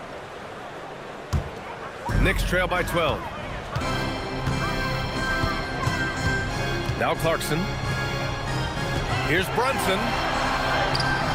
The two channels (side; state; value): both; identical; correlation 1.00